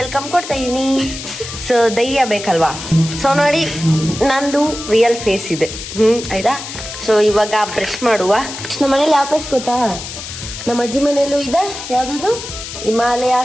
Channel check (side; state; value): left; noise; hiss, 10 dB below the sound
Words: ಕೊಡ್ತಾ ಇದೀನಿ. ಸೊ ಧೈರ್ಯ ಬೇಕಲ್ವಾ? ಸೊ ನೋಡಿ, ನಂದು ರಿಯಲ್ ಫೇಸ್ ಇದೆ. ಆಯ್ತಾ? ಸೊ ಇವಾಗ ಬ್ರಷ್ ಮಾಡುವ. ನಮ್ಮ ಮನೇಲಿ ಯಾವ ಬ್ರಷ್ ಗೊತ್ತಾ? ನಮ್ಮ ಅಜ್ಜಿ ಮನೇಲೂ ಇದೆ. ಯಾವ್ದು? Himalaya